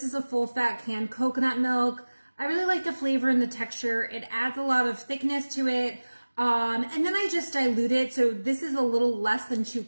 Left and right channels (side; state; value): both; inverted; correlation -1.00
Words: is a full fat canned coconut milk. I really like the flavor and the texture. It adds a lot of thickness to it. And then I just dilute it. So this is a little less than 2